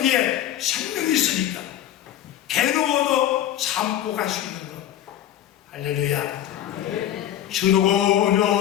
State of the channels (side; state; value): right; quieter; 11.6 dB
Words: 생명이 있으니까 괴로워도 참고 갈 수 있는 것. 할렐루야.